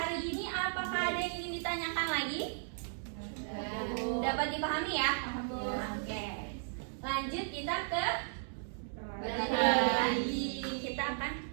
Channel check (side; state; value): left; silent; digital silence